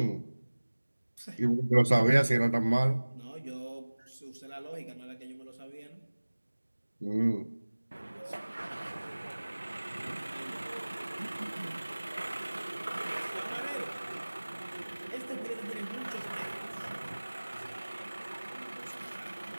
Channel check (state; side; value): inverted; both; correlation -1.00